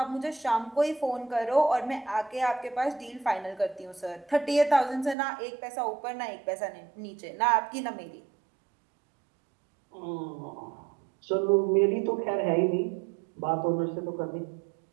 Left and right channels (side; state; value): left; drops out; at 5.2 s